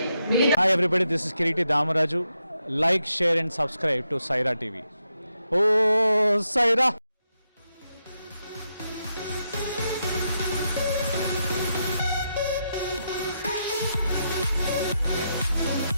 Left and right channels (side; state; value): both; inverted; correlation -0.83